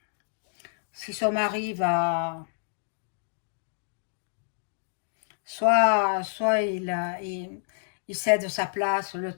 son mari va... Soit il cède sa place, le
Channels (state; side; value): silent; right; digital silence